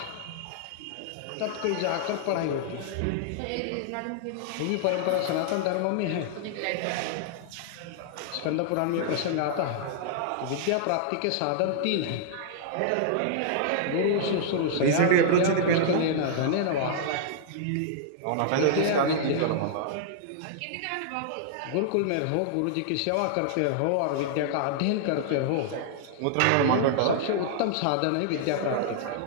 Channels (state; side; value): different; both; correlation -0.01